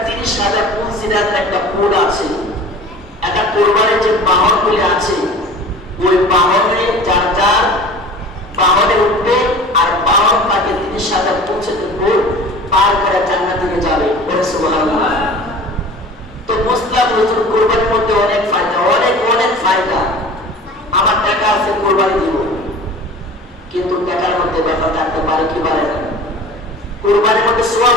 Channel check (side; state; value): both; normal; correlation 0.41